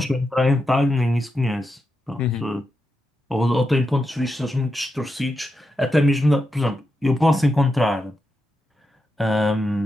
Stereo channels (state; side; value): normal; both; correlation 0.87